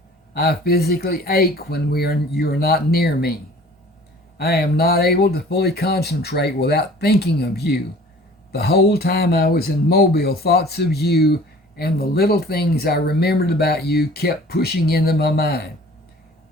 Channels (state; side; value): normal; both; correlation 0.48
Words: I physically ache when you are not near me. I am not able to fully concentrate without thinking of you. The whole time I was in Mobile, thoughts of you and the little things I remembered about you kept pushing into my mind.